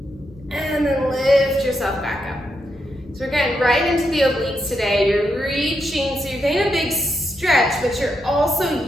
And then lift yourself back up. So we're getting right into the obliques today. You're reaching, so you're getting a big stretch, but you're also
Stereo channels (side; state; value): left; noise; rumble, 25 dB below the sound